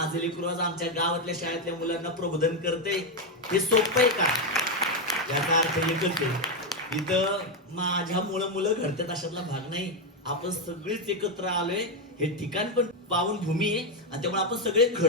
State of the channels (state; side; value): normal; both; correlation 0.05